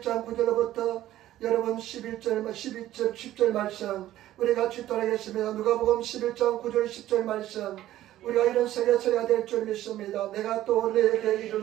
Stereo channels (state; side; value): quieter; left; 13.9 dB